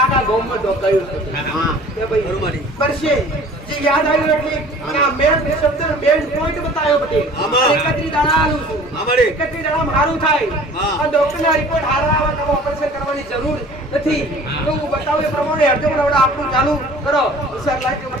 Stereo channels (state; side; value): normal; both; correlation 0.47